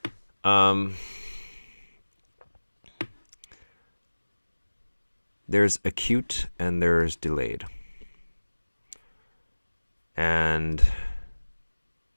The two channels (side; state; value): both; inverted; correlation -1.00